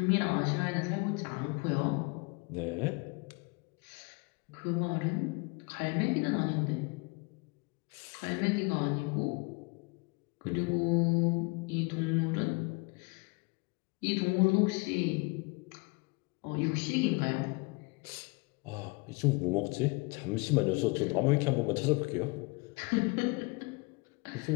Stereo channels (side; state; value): right; quieter; 28.8 dB